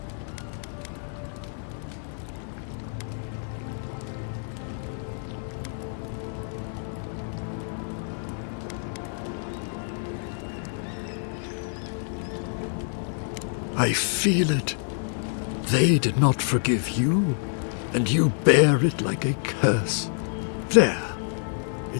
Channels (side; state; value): right; silent; 60 dB below the other